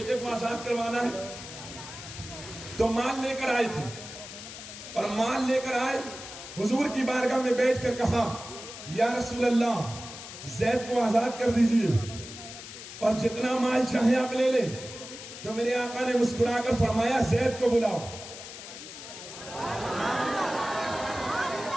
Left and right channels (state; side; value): noise; left; hiss, 12 dB below the sound